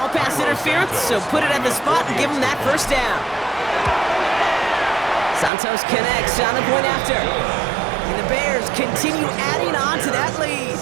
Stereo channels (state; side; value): drops out; left; at 5.5 s